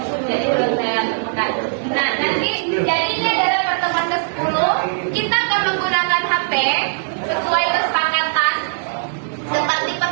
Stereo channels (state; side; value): silent; left; digital silence